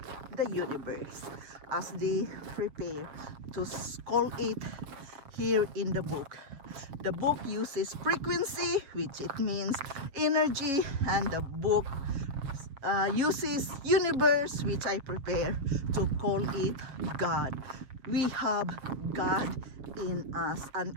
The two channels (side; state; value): left; late; 7.2 ms